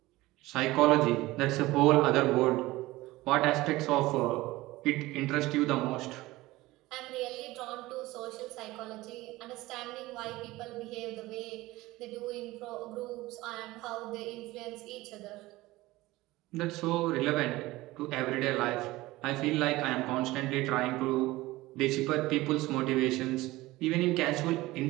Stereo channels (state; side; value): quieter; left; 18.8 dB